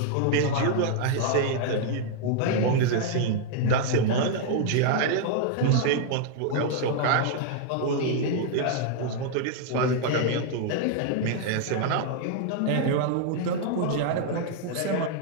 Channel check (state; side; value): different; both; correlation 0.00